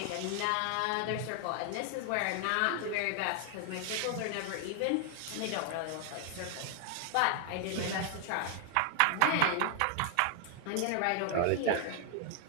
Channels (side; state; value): both; different; correlation 0.00